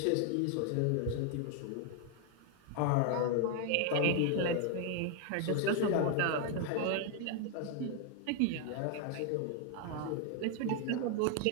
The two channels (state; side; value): different; both; correlation 0.01